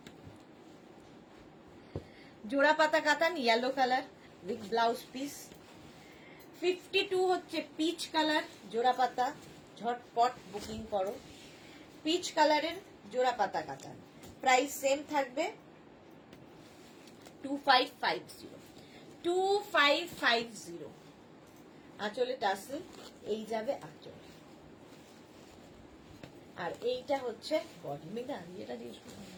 জোড়া পাতা কাতান yellow colour with blouse piece. 52 হচ্ছে পিচ কালার জোড়া পাতা। ঝটপট বুকিং করো। পিচ কালারের জোড়া পাতা কাতান। প্রাইস সেম থাকবে 2550। 2550। আঁচলে টাসেল, এই যাবে আঁচল। আর এইটা হচ্ছে বডি। মেঘা এটা দিয়ে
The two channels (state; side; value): identical; both; correlation 1.00